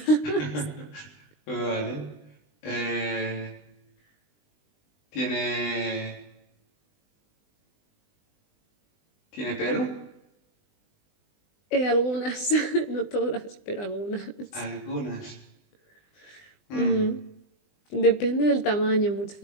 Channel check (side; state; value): right; late; 20 ms